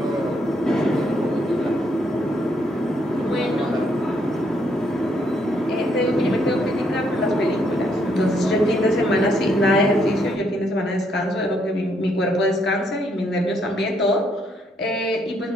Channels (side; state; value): both; normal; correlation 0.73